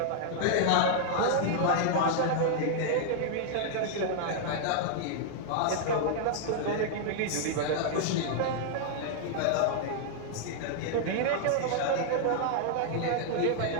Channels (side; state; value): both; different; correlation -0.01